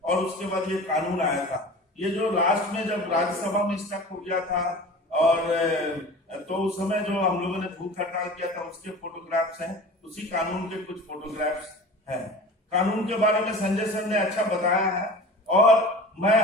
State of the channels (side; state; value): both; normal; correlation 0.38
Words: और उसके बाद ये कानून आया था। ये जो लास्ट में जब राज्यसभा में स्टक हो गया था और तो उस समय जो हम लोगों ने भूख हड़ताल किया था उसके फोटोग्राफ्स हैं, उसी कानून के कुछ फोटोग्राफ्स हैं। कानून के बारे में संजय सर ने अच्छा बताया है और मैं